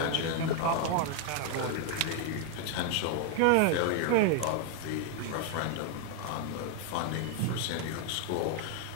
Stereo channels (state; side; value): different; both; correlation 0.00